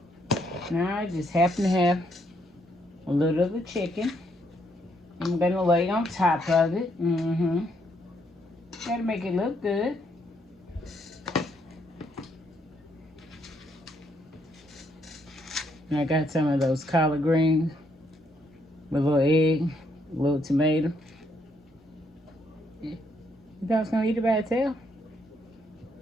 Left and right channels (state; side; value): normal; both; correlation 0.73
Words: Now I just happen to have a little of the chicken. I'm gonna lay on top of it. Gotta make it look good. And I got some of those collard greens with a little egg, a little tomato. You thought I was gonna eat it by itself?